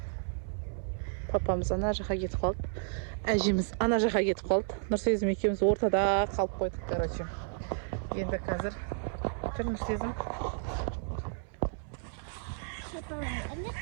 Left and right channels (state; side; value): silent; left; 56 dB below the other